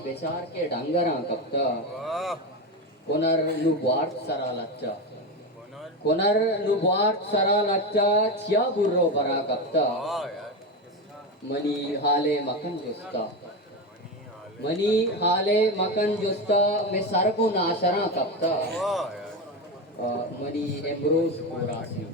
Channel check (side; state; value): both; normal; correlation 0.16